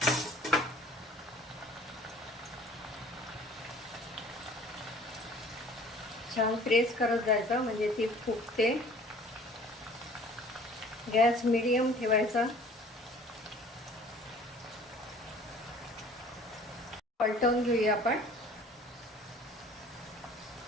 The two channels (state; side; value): normal; both; correlation 0.50